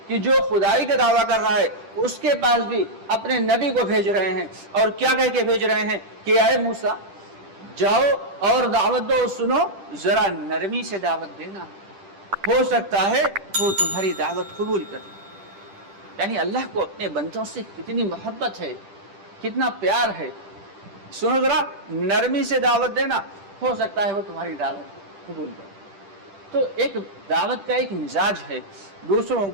کہ جو خدائی کا دعویٰ کر رہا ہے اس کے پاس بھی اپنے نبی کو بھیج رہے ہیں. اور کیا کہہ کے بھیج رہے ہیں کہ اے موسیٰ جاؤ اور دعوت دو، سنو، ذرا نرمی سے دعوت دینا، ہو سکتا ہے وہ تمہاری دعوت قبول کرے. یعنی اللہ کو اپنے بندوں سے کتنی محبت ہے، کتنا پیار ہے. سنو ذرا نرمی سے دعوت دینا، ہو سکتا ہے وہ تمہاری دعوت قبول کرے. تو ایک دعوت کا ایک مزاج ہے، دوسروں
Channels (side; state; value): left; late; 10 ms